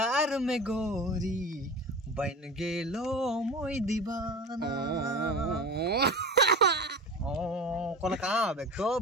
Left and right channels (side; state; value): both; normal; correlation 0.32